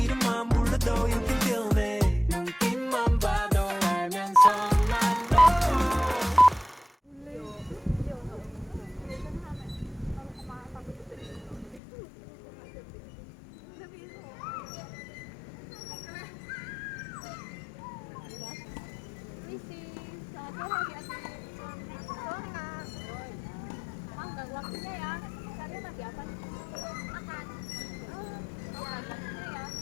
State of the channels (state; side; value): drops out; right; at 11.8 s